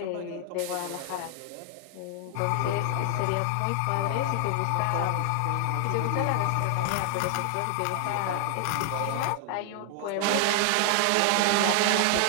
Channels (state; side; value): different; both; correlation 0.00